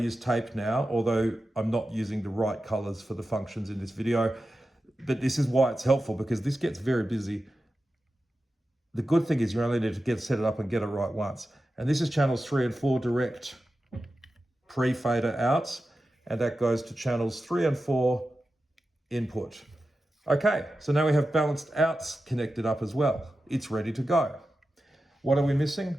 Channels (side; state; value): both; normal; correlation 0.92